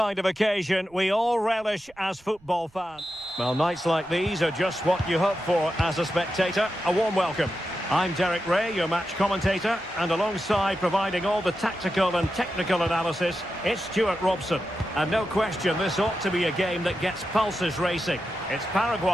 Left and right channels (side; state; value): right; noise; rumble, 28 dB below the sound